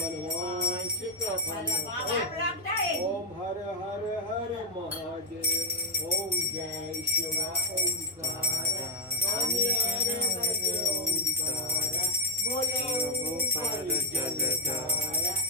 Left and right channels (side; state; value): both; normal; correlation 0.04